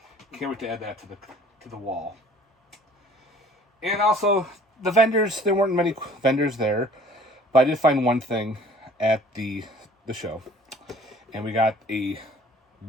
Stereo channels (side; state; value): both; normal; correlation 0.52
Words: Can't wait to add that to the wall. And also, the vendors, there weren't many vendors there, but I did find one thing at the show. And we got a